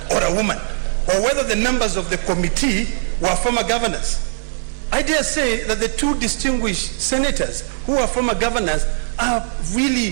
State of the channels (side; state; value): left; silent; 66 dB below the other